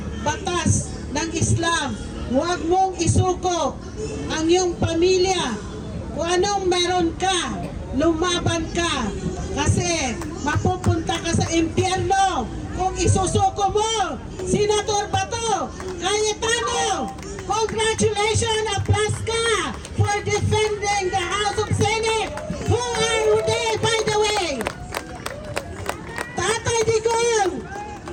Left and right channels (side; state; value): both; identical; correlation 1.00